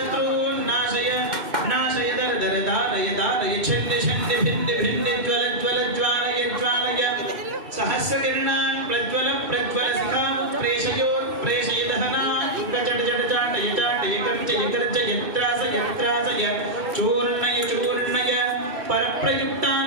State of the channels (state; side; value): late; left; 2.6 ms